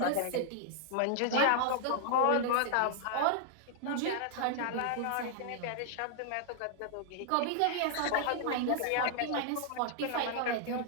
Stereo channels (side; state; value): both; different; correlation -0.01